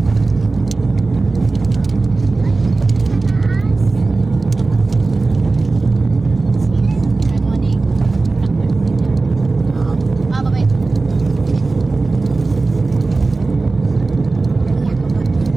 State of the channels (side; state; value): left; quieter; 3.6 dB